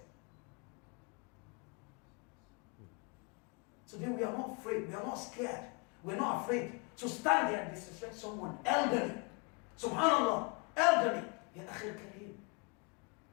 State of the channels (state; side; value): quieter; right; 32.7 dB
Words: Today we are not afraid, we are not scared, we're not afraid to stand there and disrespect someone elderly. Subhanallah, elderly. Ya akhil kareem.